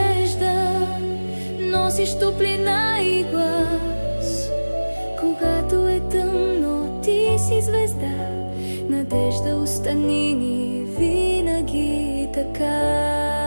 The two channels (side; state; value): both; inverted; correlation -1.00